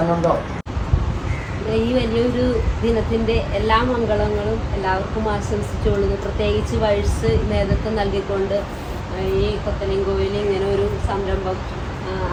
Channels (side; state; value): both; identical; correlation 1.00